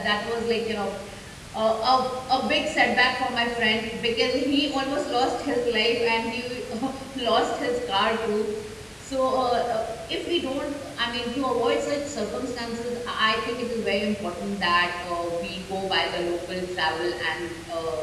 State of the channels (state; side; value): identical; both; correlation 1.00